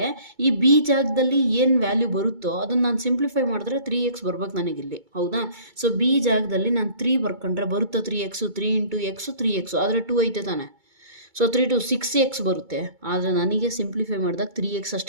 ಈ ಬಿ ಜಾಗದಲ್ಲಿ ಏನು ವ್ಯಾಲ್ಯೂ ಬರುತ್ತೋ ಅದನ್ನು ನಾನು ಸಿಂಪ್ಲಿಫೈ ಮಾಡಿದ್ರೆ 3x ಬರ್ಬೇಕು ನನಗಿಲ್ಲಿ. ಹೌದಾ? ಸೊ ಬಿ ಜಾಗದಲ್ಲಿ ನಾನು 3 ಬರ್ಕೊಂಡ್ರೆ ಬರುತ್ತಾ 3x, 3 ಇಂಟು ಎಕ್ಸು 3x, ಆದರೆ 2 ಐತೆ ತಾನೆ. ಸೊ 3 to 6x ಬರುತ್ತೆ. ಆದರೆ ನನಗೆ ಸಿಂಪ್ಲಿಫೈ ಮಾಡಿದಾಗ 3x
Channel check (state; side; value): late; left; 2.2 ms